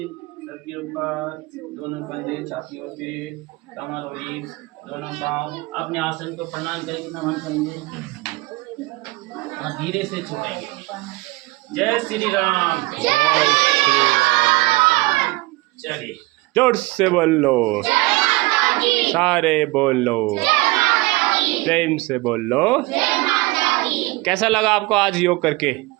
सबके ऊपर, दोनों कंधे, छातियों पे, कमर और रीढ़, दोनों पांव। अपने आसन को प्रणाम करके नमन करेंगे और धीरे से छोड़ेंगे। जय श्री राम। चलिए जोर से बोलो, सारे बोलो, प्रेम से बोलो। कैसा लगा आपको आज योग करके?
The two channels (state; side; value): quieter; left; 22.2 dB